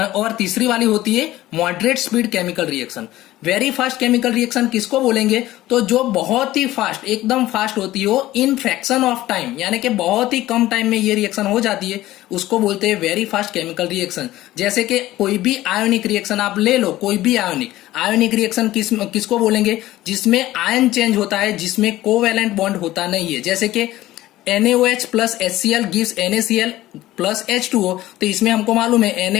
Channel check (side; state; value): right; quieter; 15.8 dB